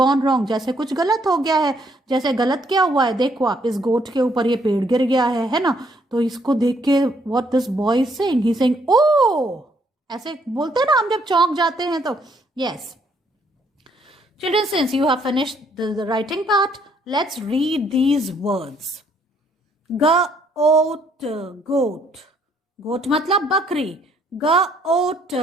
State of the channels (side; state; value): both; normal; correlation 0.68